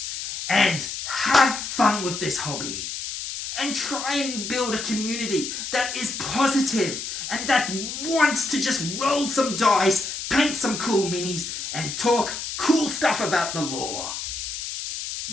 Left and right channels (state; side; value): noise; left; hiss, 6 dB below the sound